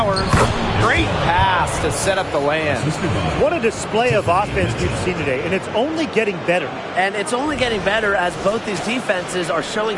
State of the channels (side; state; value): both; identical; correlation 1.00